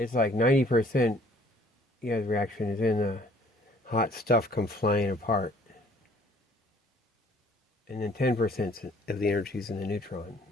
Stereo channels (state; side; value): normal; both; correlation 0.58